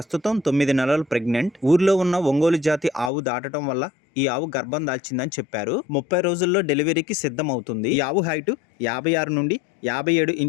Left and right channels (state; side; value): drops out; right; at 3.1 s